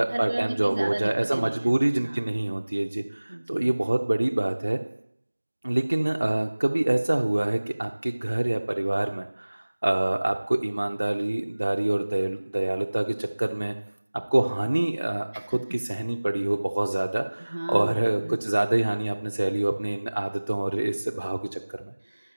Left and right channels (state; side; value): inverted; both; correlation -1.00